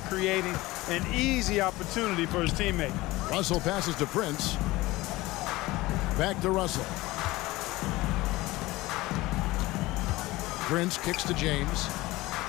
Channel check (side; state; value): right; quieter; 19.6 dB